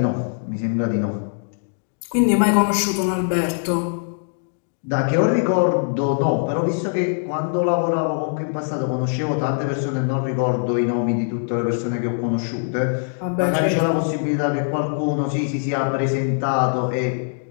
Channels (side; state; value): right; silent; digital silence